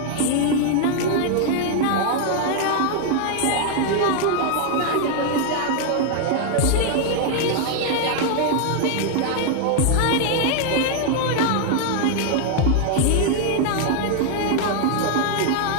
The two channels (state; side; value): different; both; correlation 0.00